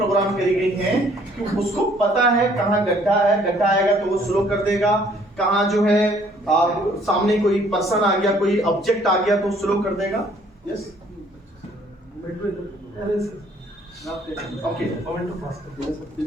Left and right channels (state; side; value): normal; both; correlation 0.61